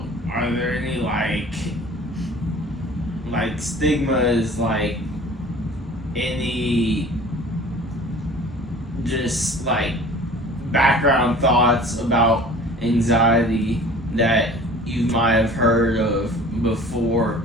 are there any stigmas, any just background thoughts about anxiety that you might have heard of before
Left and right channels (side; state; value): both; normal; correlation 0.45